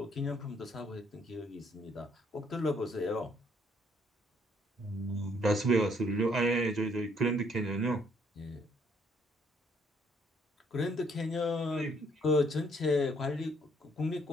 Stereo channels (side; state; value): both; normal; correlation 0.67